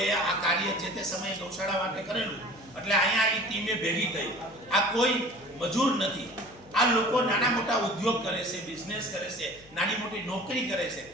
આ કાર્ય જે તે સમયે ગૌશાળા માટે કરેલું. એટલે અહીંયા એ ટીમે ભેગી થઈ. આ કોઈ મજૂર નથી, આ લોકો નાના મોટા ઉદ્યોગ કરે છે, બિઝનેસ કરે છે, નાની મોટી નોકરી કરે છે.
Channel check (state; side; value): noise; left; hum, 24 dB below the sound